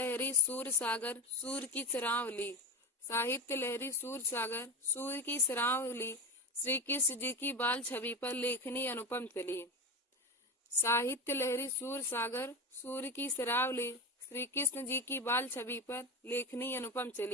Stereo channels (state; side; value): normal; both; correlation 0.21